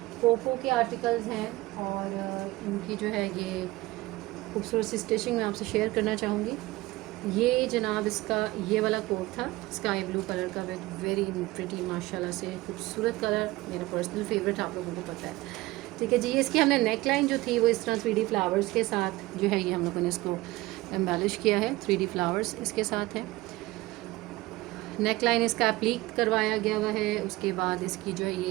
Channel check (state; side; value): quieter; left; 19.4 dB